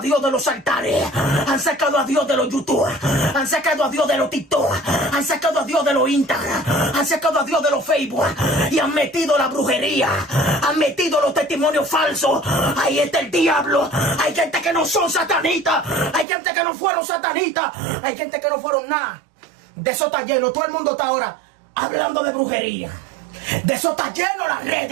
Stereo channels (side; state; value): left; drops out; at 16.2 s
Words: Dios de los altares. Han sacado a Dios de los YouTube. Han sacado a Dios de los TikTok. Han sacado a Dios de los Instagram, han sacado a Dios de los Facebook y han metido la brujería, han metido los testimonios falsos. Ahí está el diablo. Hay gente que no son satanistas, hay gente que no fueron satanistas, hay gente que no fueron nada. De eso está lleno. Todo el mundo está ahora hablando de brujería. De eso está lleno las